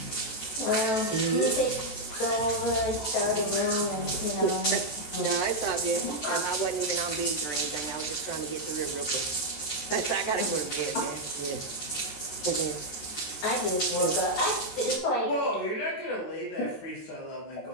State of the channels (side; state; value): right; late; 13 ms